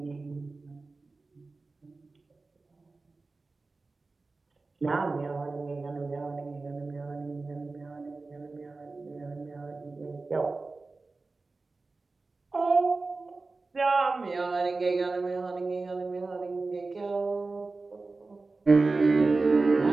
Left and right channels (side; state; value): left; quieter; 3.7 dB